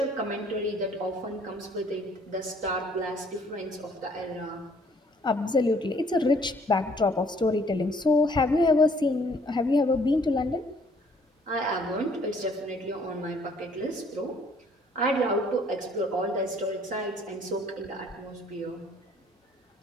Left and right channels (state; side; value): normal; both; correlation 0.61